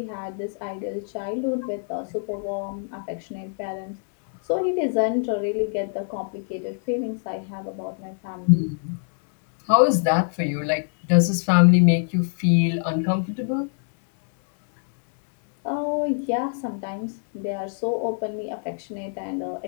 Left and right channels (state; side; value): silent; right; 61 dB below the other